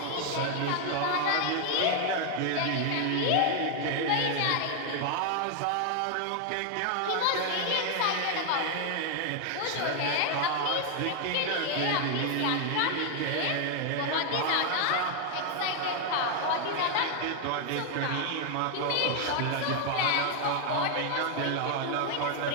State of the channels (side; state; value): both; different; correlation 0.00